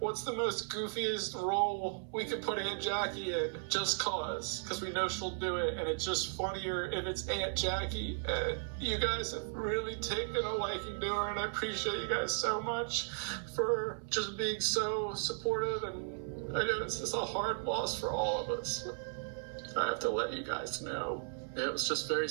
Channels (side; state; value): left; silent; 54 dB below the other